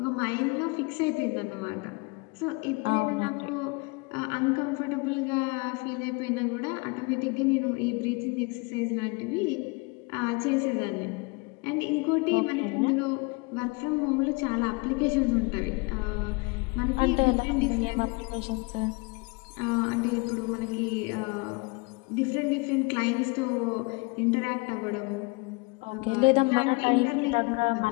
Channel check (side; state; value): right; quieter; 28.4 dB